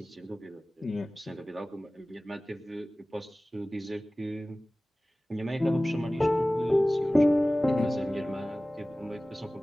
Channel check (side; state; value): both; normal; correlation 0.98